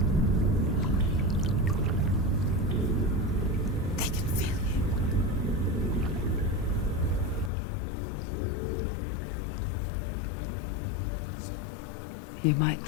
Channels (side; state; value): right; drops out; at 7.5 s